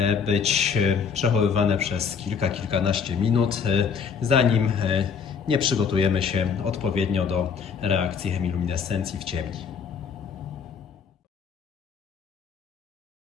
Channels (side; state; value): right; quieter; 6.4 dB